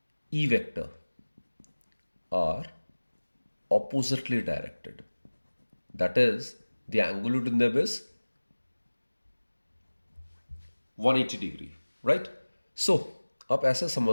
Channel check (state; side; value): inverted; both; correlation -1.00